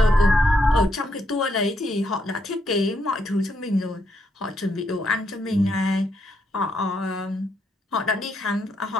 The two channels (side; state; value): both; normal; correlation 0.77